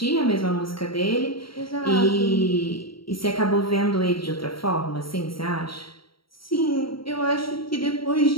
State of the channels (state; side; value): late; right; 0.74 ms